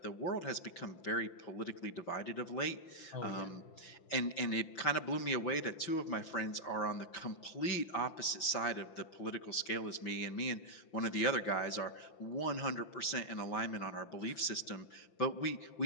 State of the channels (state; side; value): late; right; 5.8 ms